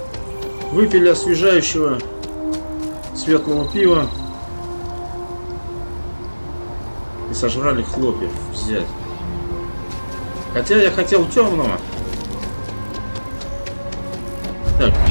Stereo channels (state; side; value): inverted; both; correlation -1.00